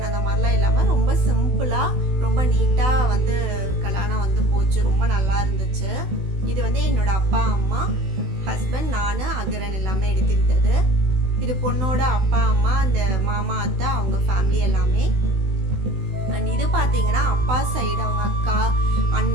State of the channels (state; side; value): late; left; 16 ms